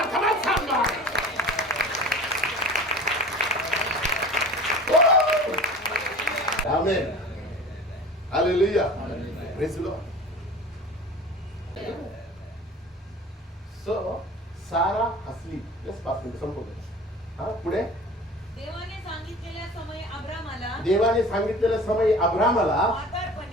come on somebody. Amen. Hallelujah. Praise the Lord. So, सारा हसली. Just 5 minutes संपवतो. हा, पुढे. देवाने सांगितलेल्या समयी अब्रामाला, देवाने सांगितलेल्या समयी अब्रामाला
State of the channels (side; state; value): both; normal; correlation 0.39